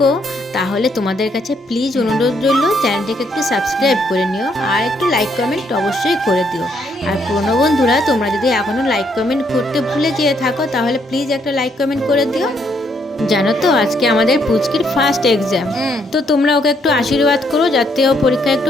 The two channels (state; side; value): normal; both; correlation 0.72